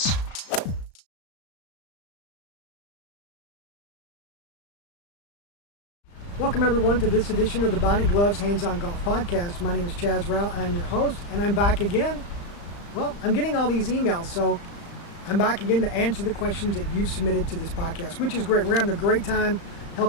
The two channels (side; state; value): right; late; 35 ms